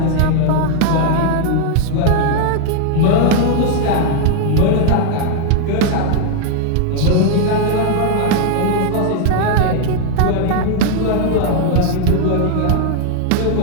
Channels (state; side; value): different; both; correlation 0.00